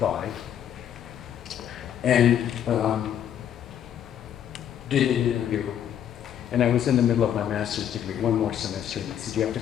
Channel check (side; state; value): right; quieter; 9.9 dB